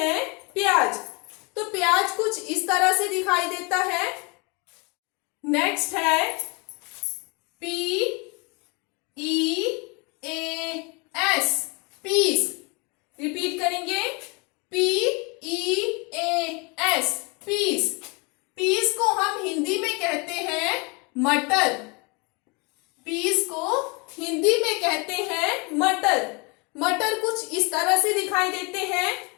प्याज। तो प्याज कुछ इस तरह से दिखाई देता है। नेक्स्ट है PEAS, पीस। रिपीट करेंगे PEAS, पीस। पीस को हम हिंदी में कहते हैं मटर। पीस को हिंदी में कहते हैं मटर। मटर कुछ इस तरह से दिखाई देते हैं।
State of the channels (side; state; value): right; quieter; 29.9 dB